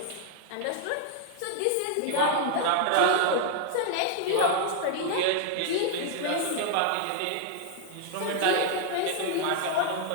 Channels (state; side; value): different; both; correlation 0.00